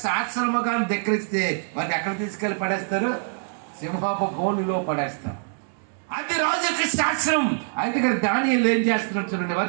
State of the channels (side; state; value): left; silent; digital silence